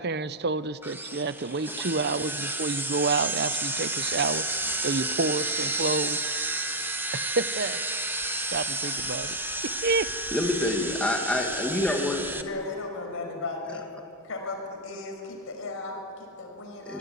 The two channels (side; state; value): both; normal; correlation -0.03